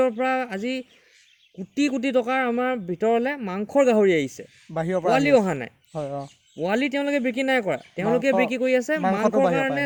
পৰা আজি কোটি কোটি টকাৰ আমাৰ ভিতৰলৈ মাংসৰ গাহৰি আহিছে, পোৱালি অহা নাই। পোৱালি তেওঁলোকে বিক্ৰী নাই কৰা, তেওঁলোকে বিক্ৰী কৰি আছে মাংসৰ কাৰণে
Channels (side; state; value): both; identical; correlation 1.00